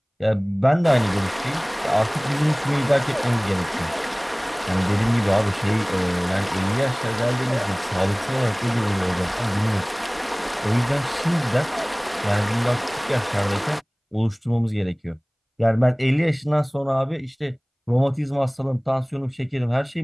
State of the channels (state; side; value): identical; both; correlation 1.00